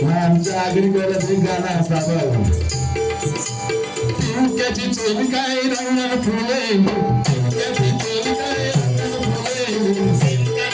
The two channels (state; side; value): identical; both; correlation 1.00